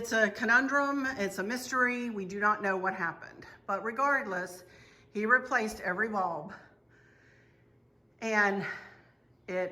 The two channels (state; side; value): identical; both; correlation 1.00